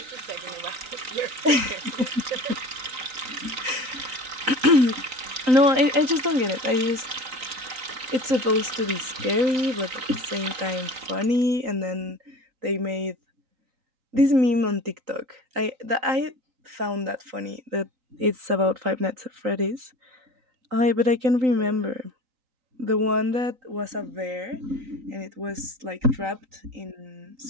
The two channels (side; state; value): left; late; 3.9 ms